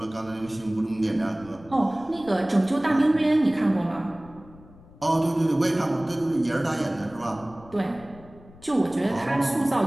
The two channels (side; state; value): left; noise; rumble, 23 dB below the sound